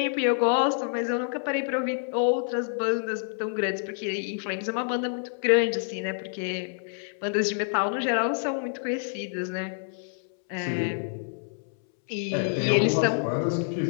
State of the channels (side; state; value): right; silent; 60 dB below the other